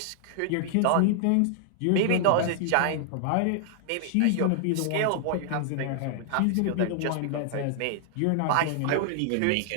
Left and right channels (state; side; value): different; both; correlation -0.01